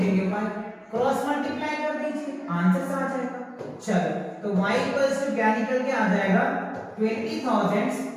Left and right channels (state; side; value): identical; both; correlation 1.00